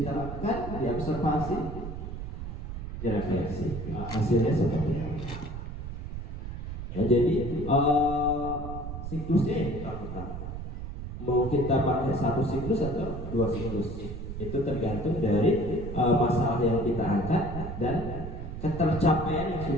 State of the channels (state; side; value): noise; right; rumble, 7 dB below the sound